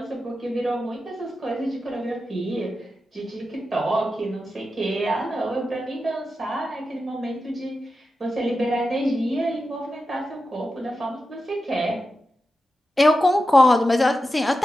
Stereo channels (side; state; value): both; normal; correlation 0.91